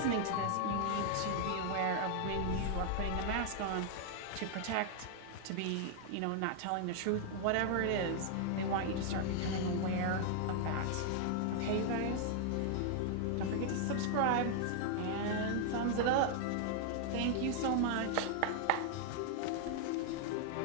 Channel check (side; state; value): both; different; correlation 0.00